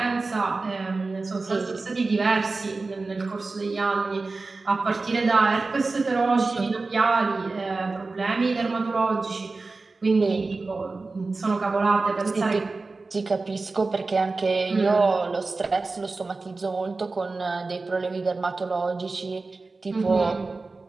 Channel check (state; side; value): quieter; left; 3.7 dB